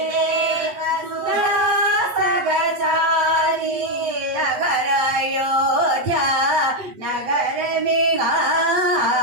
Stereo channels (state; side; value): late; left; 8.4 ms